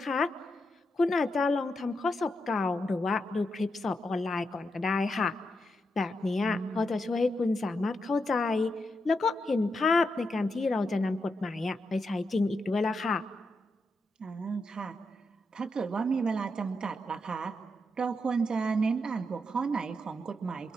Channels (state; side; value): normal; both; correlation 0.84